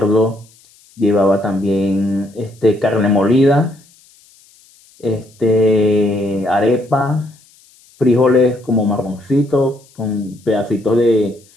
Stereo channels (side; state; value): left; noise; hiss, 29 dB below the sound